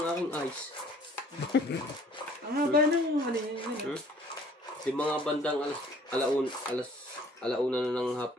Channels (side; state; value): both; normal; correlation 0.56